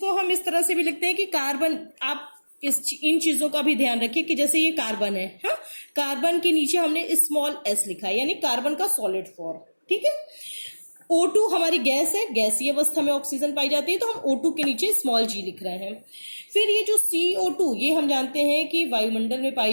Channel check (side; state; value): both; inverted; correlation -1.00